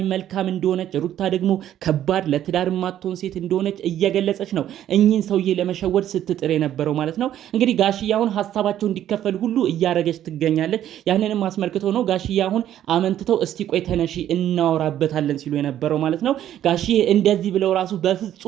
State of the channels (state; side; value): quieter; left; 11.4 dB